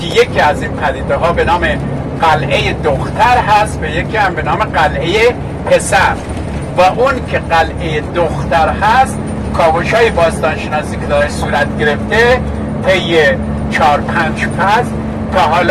یکی از این پدیده ها به نام قلعه دختر هست و یکی هم به نام قلعه پسر. و اون که قلعه دختر هست، کاوش های باستانشناسی که داره صورت گرفته طی 4-5 فصل تا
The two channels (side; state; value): both; identical; correlation 1.00